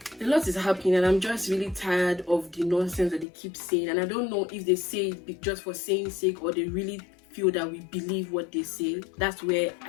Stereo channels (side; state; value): right; drops out; at 3.2 s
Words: A lot is happening, and I'm just really tired of the nonsense that they keep saying. And I don't know if they say it just for saying sake, or they really feel that we believe what they say. That's where